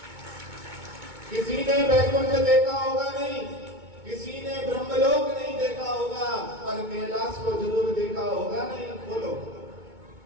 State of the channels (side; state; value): left; late; 2.2 ms